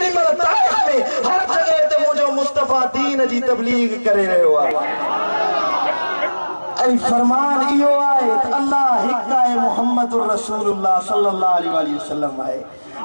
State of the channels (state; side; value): inverted; both; correlation -1.00